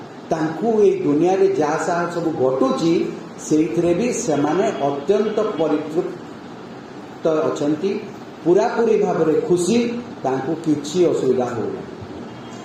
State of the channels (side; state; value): both; identical; correlation 1.00